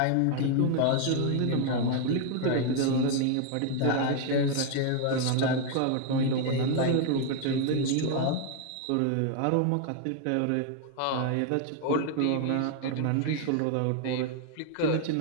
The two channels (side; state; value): both; different; correlation 0.00